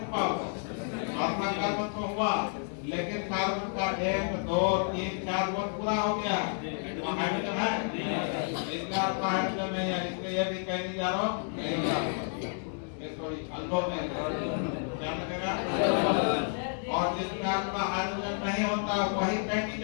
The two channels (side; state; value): right; silent; 57 dB below the other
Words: हुआ, अपना कार्बन तो हुआ लेकिन कार्बन का 1 2 3 4 बॉन्ड पूरा हो गया, हाइड्रोजन है, इसका हाइड्रोजन नहीं है, इसलिए ये भी कहीं नहीं जा रहा हूँ। सॉरी अल्फा में क्या लगेगा और जिसमें आपका हाइड्रोजन नहीं होता वही फैटी